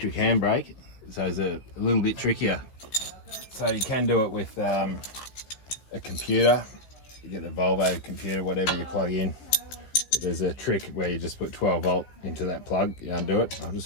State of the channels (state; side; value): late; right; 15 ms